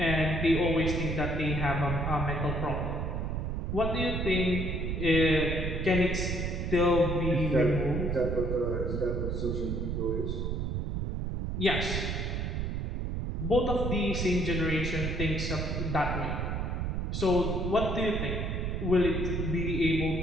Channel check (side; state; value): right; noise; rumble, 1 dB below the sound